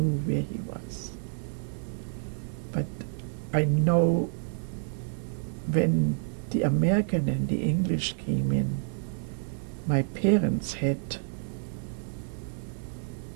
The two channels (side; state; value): left; silent; 58 dB below the other